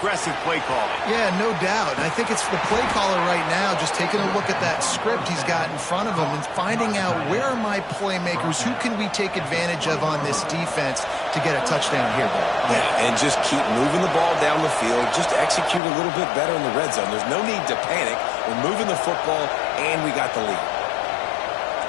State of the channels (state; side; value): drops out; right; at 15.8 s